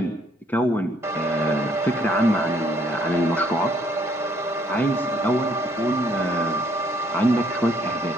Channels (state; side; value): normal; both; correlation 0.66